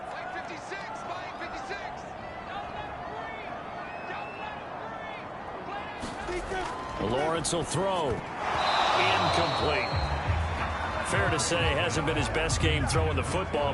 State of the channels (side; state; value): both; identical; correlation 1.00